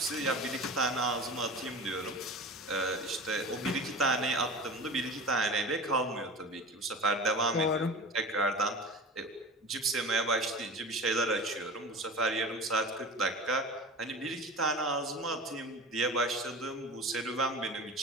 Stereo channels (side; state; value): both; normal; correlation 0.34